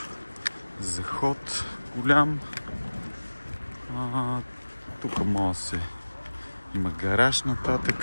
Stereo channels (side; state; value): both; inverted; correlation -1.00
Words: заход голям. Тук може се има гараж